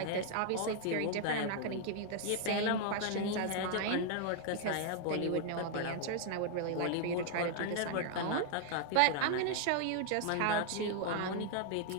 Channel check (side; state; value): both; different; correlation 0.00